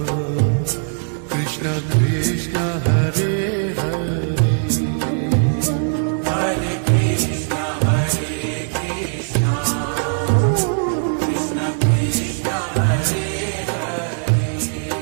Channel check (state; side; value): silent; left; digital silence